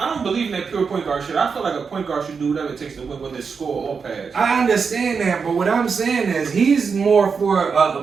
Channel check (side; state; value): left; quieter; 5.6 dB